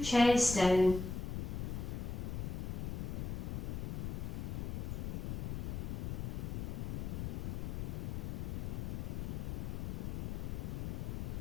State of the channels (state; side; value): noise; left; rumble, 2 dB below the sound